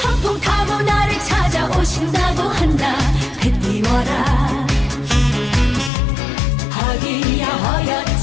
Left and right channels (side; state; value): right; drops out; at 5.9 s